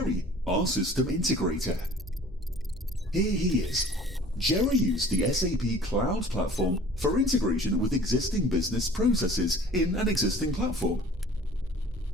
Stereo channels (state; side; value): normal; both; correlation 0.48